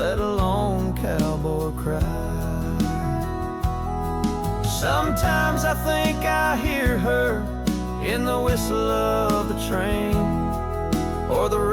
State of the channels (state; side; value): identical; both; correlation 1.00